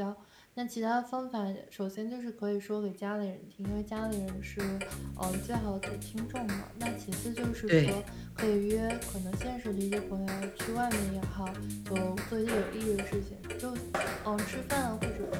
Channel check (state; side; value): identical; both; correlation 1.00